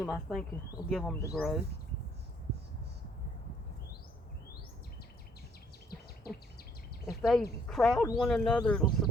I think it'll give them to grow. If they crowd one another, it'll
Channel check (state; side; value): normal; both; correlation 0.64